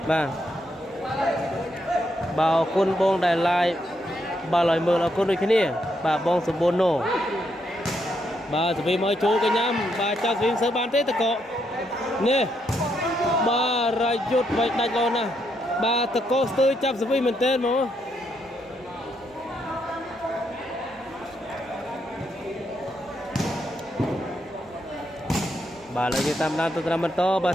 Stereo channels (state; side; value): normal; both; correlation 0.78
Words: បាទបាទអរគុណបងដែល live បាទឲ្យមើលអរគុណដូចគ្នាបាទបងសម្បូរណូបាទសវីមកចូលកញ្ញាំបាទចាប់សវីសើបានទេតកនេះបាទរាយុទ្ធវាយដាច់លោណាបាទតកស្ទើរចាប់សវីមែនតើមកបាទឥឡូវយើងតាមដានទៅតាមបន្តបាទ